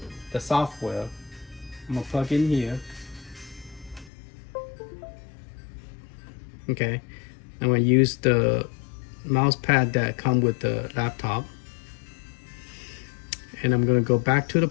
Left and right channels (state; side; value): drops out; right; at 4.1 s